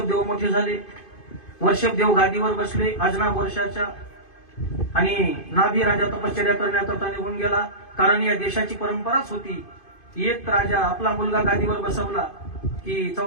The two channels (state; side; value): late; right; 2.5 ms